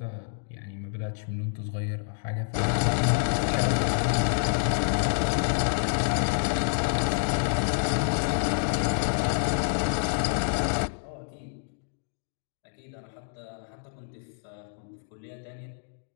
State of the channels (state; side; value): silent; right; digital silence